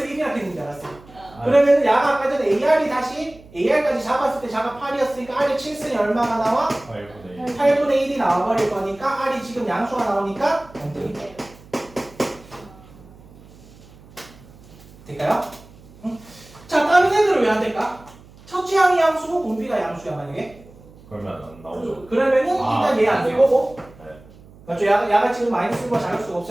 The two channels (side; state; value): right; noise; hum, 23 dB below the sound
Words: 1이라 했는 줄 알았어. 그러면은 야가 아까 전에 AR까지 잡았을 때 자가 8이었으니까 R이 7승이 얼마가 나와? 8분의 1이 나와버릴 거니까 R이 지금 양수가 나오니까 안 되겠죠. 될까요? 응? 자, 다른 애들은 왜 안 될까? 첫째 항이 양수고 공비가 양수야 만약에. 그러면 안 나오죠. 그러면은 일단 얘 안 될 거고. 네. 맞죠? 야가 지금 마이너스가 작을 수가